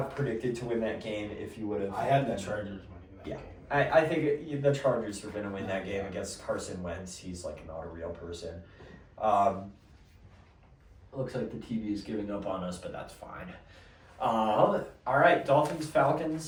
predicted to win that game if you would have... I had the Chargers winning that game. I think the Chargers are going to win that game against Carson Wentz. He's like not a real person. Looks like the TV is giving up on us, but that's fine. All right, Dolphins,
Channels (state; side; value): identical; both; correlation 1.00